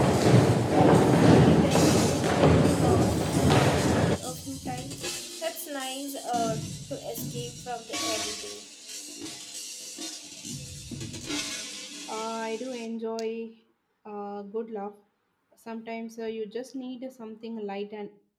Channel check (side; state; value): both; identical; correlation 1.00